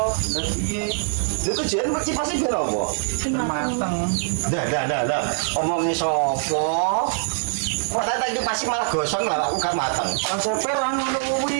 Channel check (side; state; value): left; silent; 63 dB below the other